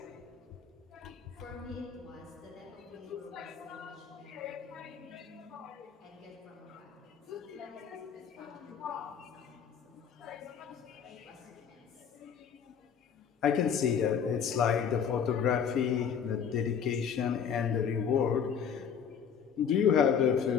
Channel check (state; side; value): quieter; right; 7.4 dB